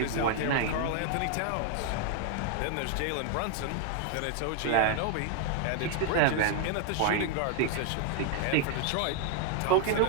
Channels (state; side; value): different; both; correlation 0.00